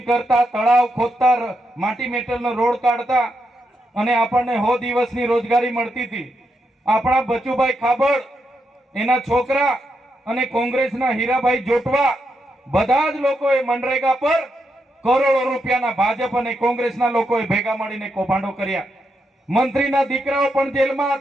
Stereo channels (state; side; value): normal; both; correlation 0.82